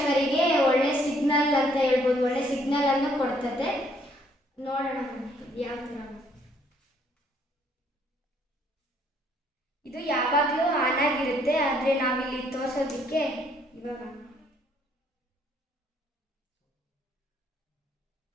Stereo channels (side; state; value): both; normal; correlation 0.66